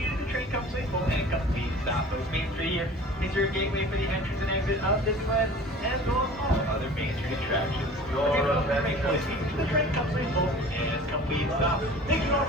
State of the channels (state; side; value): normal; both; correlation 0.43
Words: the train comes to a full and complete stop. Folks, Main Street here is your gateway for the entrance and exit of Disneyland, as well as all other Main Street attractions. The train comes to a full and complete stop. Thank you all